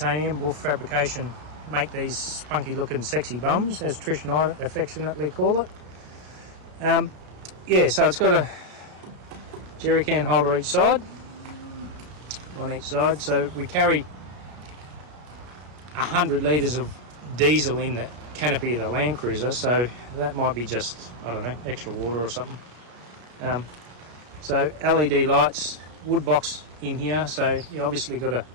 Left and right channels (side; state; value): left; late; 33 ms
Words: Wolf Fabrication, make these spunky looking sexy bums, as Trish and I affectionately call it. Yeah, so it's got a jerry can holder each side, on each side. So we carry 100 litres of diesel in the canopy of the Land Cruiser, so that might be just, I don't know, extra water or something. So LED lights, wood box in here, so you obviously got to